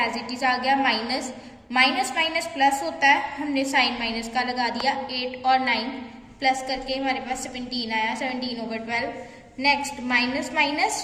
इट इज आ गया, माइनस माइनस प्लस होता है, हमने साइन माइनस का लगा दिया। 8 और 9 प्लस करके हमारे पास 17 आया, 17/12। Next minus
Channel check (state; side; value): identical; both; correlation 1.00